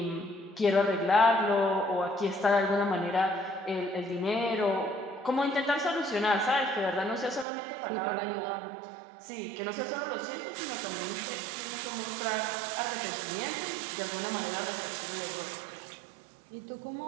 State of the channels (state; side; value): drops out; left; at 7.5 s